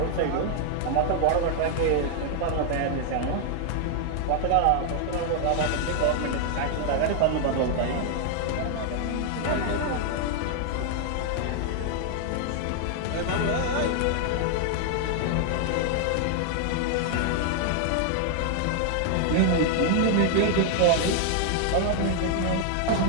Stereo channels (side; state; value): both; different; correlation 0.00